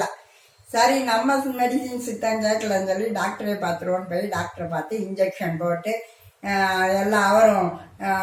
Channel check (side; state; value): both; identical; correlation 1.00